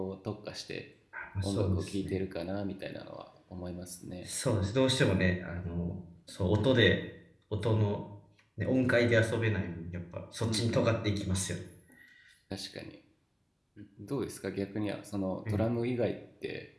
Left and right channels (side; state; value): both; identical; correlation 1.00